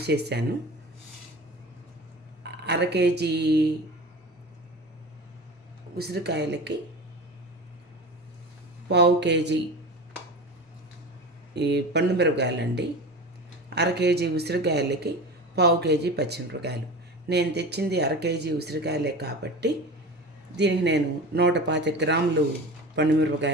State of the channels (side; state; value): both; normal; correlation 0.32